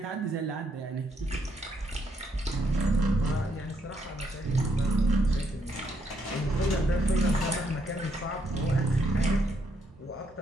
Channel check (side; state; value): both; normal; correlation 0.75